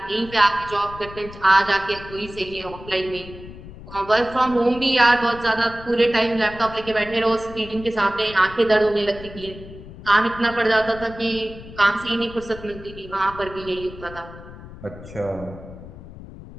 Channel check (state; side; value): noise; left; rumble, 15 dB below the sound